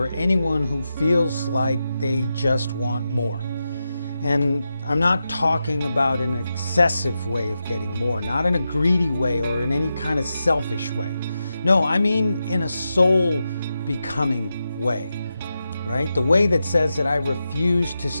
anyone who feels like they just want more. And I'm not talking about an excessive way of getting more, not in a greedy way or in any kind of selfish way. No, I mean in a soul becoming way. Right? The way that says that I refuse to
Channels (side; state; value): both; inverted; correlation -0.89